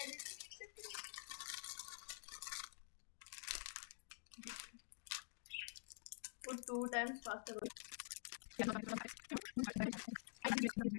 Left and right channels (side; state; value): right; silent; digital silence